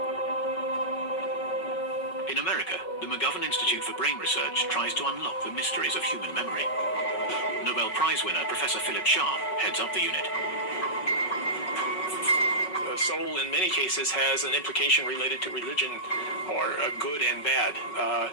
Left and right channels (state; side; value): late; right; 5.4 ms